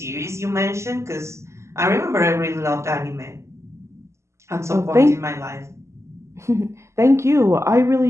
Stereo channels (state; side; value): late; left; 0.13 ms